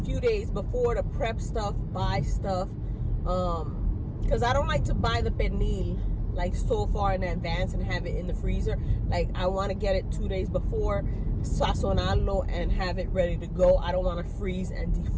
days before to prep stuff, buy stuff, because I don't like to buy the pernil like so far in advance and have it in the freezer. Like, I want to get it 2 days before, sazonarlo, and have it ready to go. I don't want to freeze and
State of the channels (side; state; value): both; identical; correlation 1.00